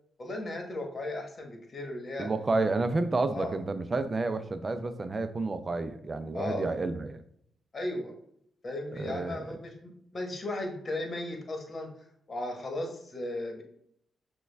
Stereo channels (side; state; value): both; normal; correlation 0.88